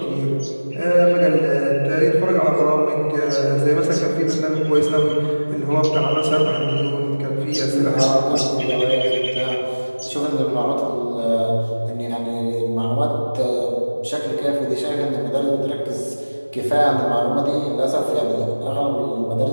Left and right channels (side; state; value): both; inverted; correlation -1.00